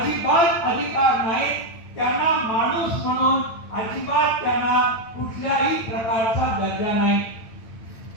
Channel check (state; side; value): late; right; 8.8 ms